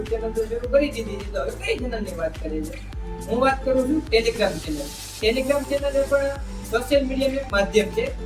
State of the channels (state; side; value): identical; both; correlation 1.00